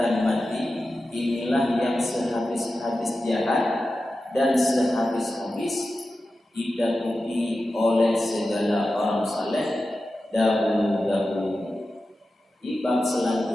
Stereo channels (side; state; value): both; normal; correlation 0.93